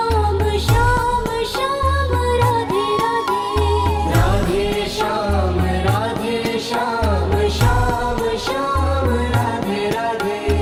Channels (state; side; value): identical; both; correlation 1.00